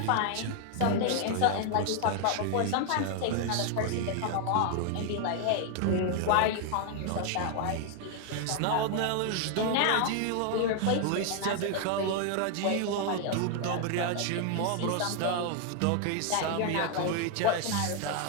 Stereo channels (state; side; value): different; both; correlation 0.00